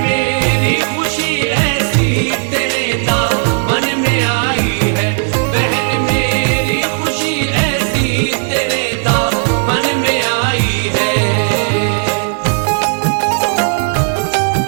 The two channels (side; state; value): left; silent; 56 dB below the other